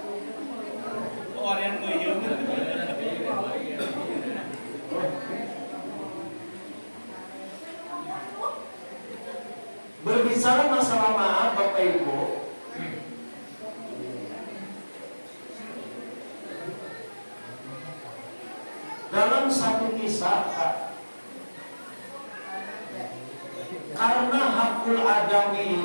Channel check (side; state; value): both; inverted; correlation -1.00